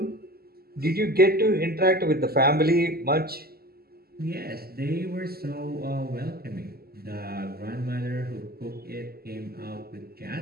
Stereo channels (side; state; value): left; late; 0.45 ms